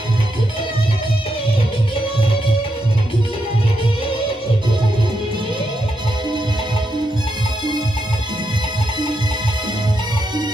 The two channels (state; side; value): normal; both; correlation 0.83